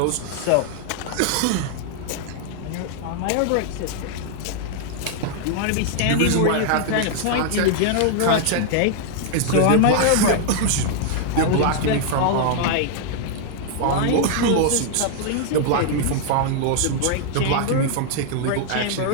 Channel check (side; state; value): both; different; correlation 0.00